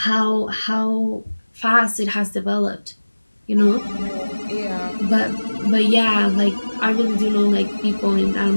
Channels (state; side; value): inverted; both; correlation -1.00